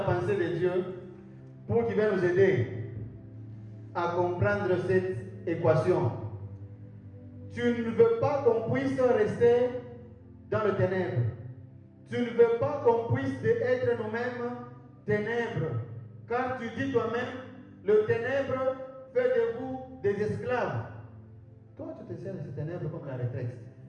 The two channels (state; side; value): identical; both; correlation 1.00